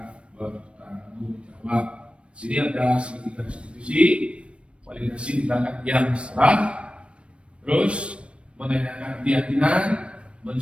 bertanggung jawab. Sini ada segitiga institusi, validasi tindakan yang salah, terus menanyakan keyakinan,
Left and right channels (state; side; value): late; left; 0.060 ms